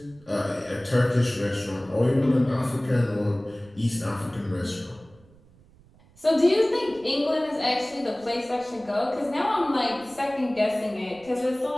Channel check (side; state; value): right; noise; rumble, 27 dB below the sound